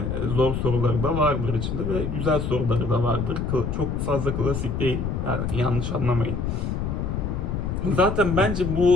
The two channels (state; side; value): noise; left; rumble, 2 dB below the sound